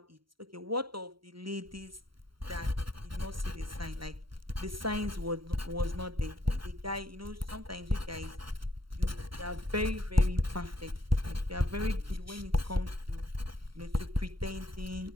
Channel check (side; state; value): left; late; 0.74 ms